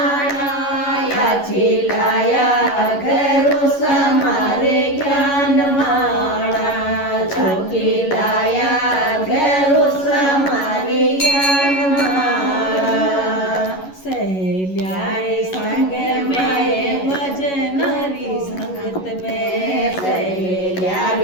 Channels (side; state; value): right; late; 11 ms